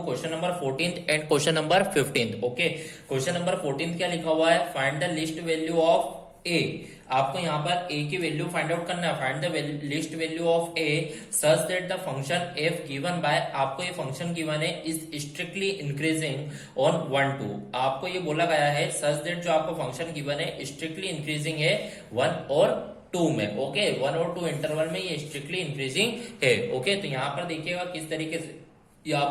question number 14 and question number 15। Okay, question number 14 क्या लिखा हुआ है? Find the least value of A. आपको यहाँ पर ए की वैल्यू फाइंड आउट करना है। Find the least value of A such that the function F given by, आपको ये फंक्शन गिवन है, इज स्ट्रिक्टली इंक्रीजिंग ऑन 1 2। आपको ये बोला गया है सच दैट जो आपको फंक्शन गिवन है स्ट्रिक्टली इंक्रीजिंग है 1 और 2 में। ओके, 1 और 2 इंटरवल में ये स्ट्रिक्टली इंक्रीजिंग है। ओके, तो यहाँ पर देखिएगा किस तरीके से यहाँ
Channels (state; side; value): identical; both; correlation 1.00